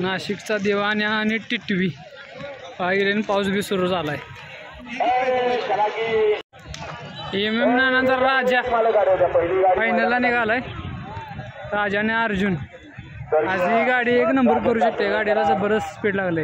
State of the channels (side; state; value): both; identical; correlation 1.00